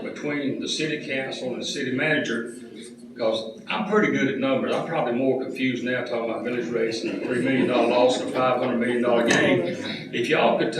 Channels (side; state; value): both; identical; correlation 1.00